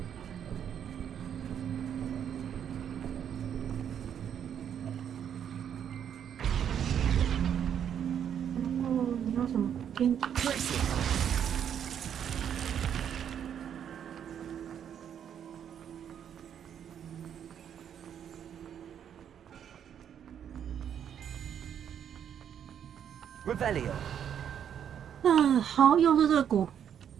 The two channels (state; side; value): quieter; left; 8.9 dB